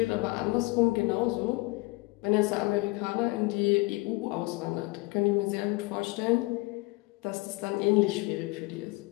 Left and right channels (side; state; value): right; quieter; 23.5 dB